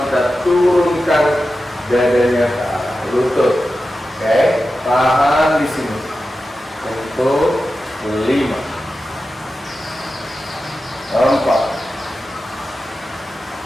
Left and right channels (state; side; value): normal; both; correlation 0.92